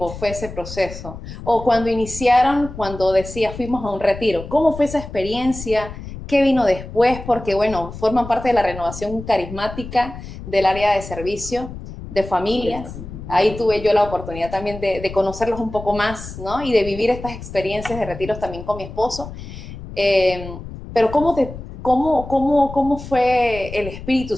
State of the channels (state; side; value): noise; left; rumble, 11 dB below the sound